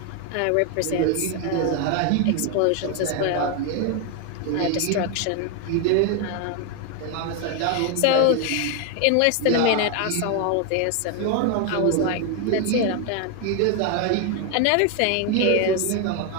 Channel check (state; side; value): different; both; correlation 0.01